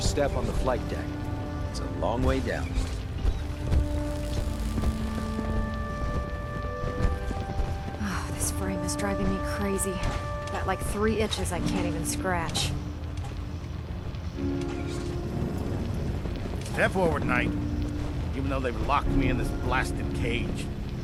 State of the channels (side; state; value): both; identical; correlation 1.00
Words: step on the flight deck. It's a long way down. Oh, this frame is driving me crazy. Got like 3 itches I can't even scratch. Step forward, Knight. Even though they've locked me in this blasted cage,